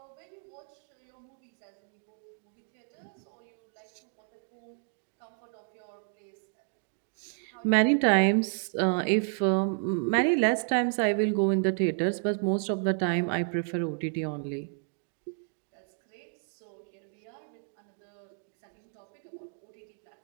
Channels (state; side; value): silent; left; 57 dB below the other